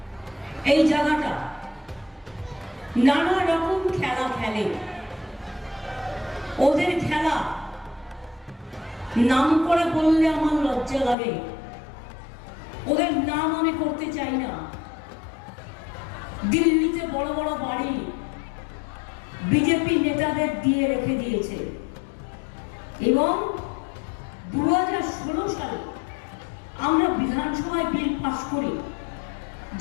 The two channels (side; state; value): right; drops out; at 11.2 s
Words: এই জায়গাটা নানা রকম খেলা খেলে। ওদের খেলা নাম করে বললে আমার লজ্জা লাগে। ওদের নাম আমি করতে চাই না। দিল্লিতে বড় বড় বাড়ি বিজেপি নেতাদের দিয়ে রেখে দিয়েছে এবং 2016 সালে আমরা বিধানসভায় বিল পাস করি